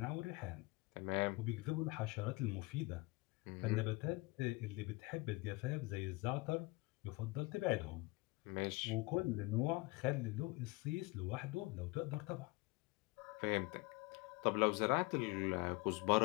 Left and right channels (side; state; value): right; quieter; 23.6 dB